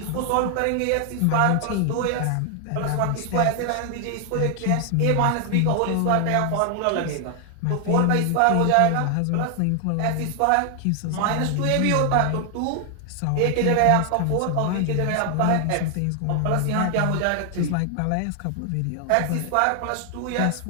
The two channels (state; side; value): different; both; correlation 0.00